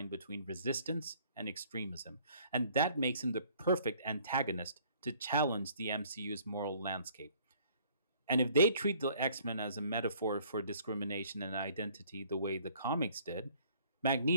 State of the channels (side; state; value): both; inverted; correlation -0.58